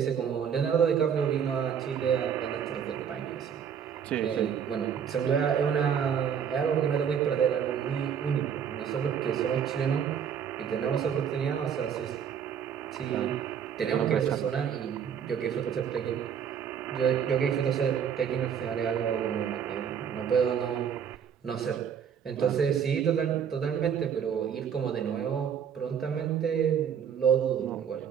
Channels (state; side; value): quieter; left; 7.9 dB